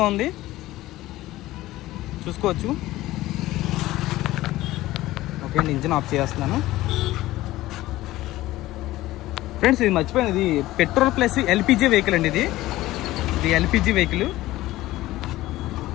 ఉంది, చూసుకోవచ్చు. ఓకే అండి, ఇంజిన్ ఆఫ్ చేస్తున్నాను. ఫ్రెండ్స్, ఇది మర్చిపోయాను, ఇది పెట్రోల్ ప్లస్ ఎల్పిజి వెహికల్ అండి. ఇది ఎల్పిజి వెహికల్.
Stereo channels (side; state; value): right; quieter; 16.7 dB